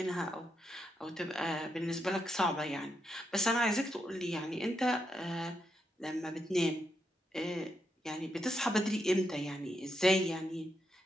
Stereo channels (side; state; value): both; normal; correlation 0.82